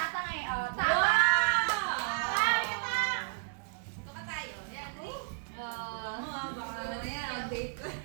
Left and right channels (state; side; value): silent; left; digital silence